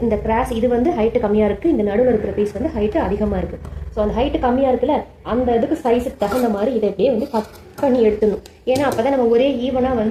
இந்த கிராஸ் இது வந்து ஹைட்டு கம்மியாக இருக்குது, இந்த நடுவில் இருக்கிற பீஸ் வந்து ஹைட்டு அதிகமாக இருக்குது. ஸோ அந்த ஹைட்டு கம்மியாக இருக்குல்ல, அந்த இதுக்கு சைஸுக்கு தகுந்த மாதிரி இதை இப்படியே வந்து கட் பண்ணி எடுத்துடணும். ஏன்னா அப்போ தான் நம்ம ஒரே ஈவனாக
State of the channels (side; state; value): both; identical; correlation 1.00